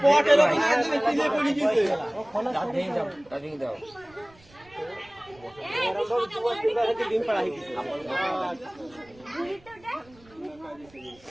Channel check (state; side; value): noise; right; rumble, 27 dB below the sound